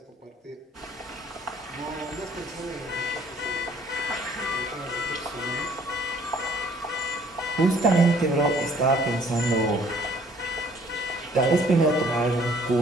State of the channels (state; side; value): normal; both; correlation 0.58